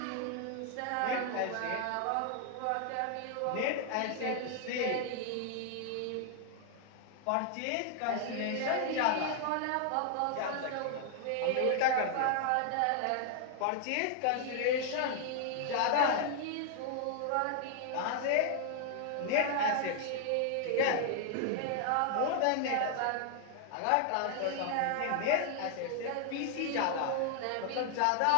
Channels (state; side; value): different; both; correlation 0.00